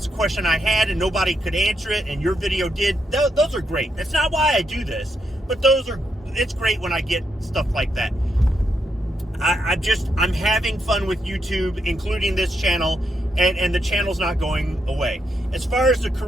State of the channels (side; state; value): both; normal; correlation 0.80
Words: the question I had, and nobody could answer it, and your video did. Those are great. That's not why I do this, but it's great when I get stuff like that. I'm having fun with YouTube, including this channel, and the channel's not going away. As far as the